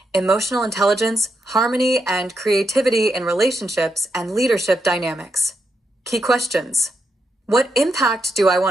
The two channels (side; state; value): both; normal; correlation 0.83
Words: emotional intelligence, harmony, and creativity in relationships and leadership dynamics. Key questions. What impact do I